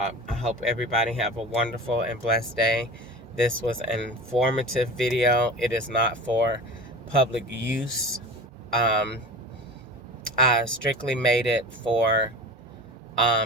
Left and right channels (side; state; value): both; normal; correlation 0.35